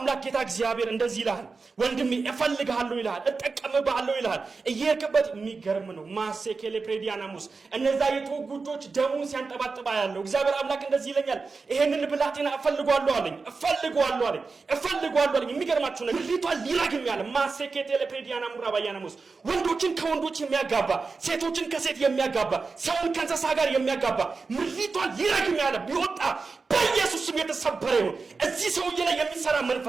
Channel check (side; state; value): left; quieter; 4.4 dB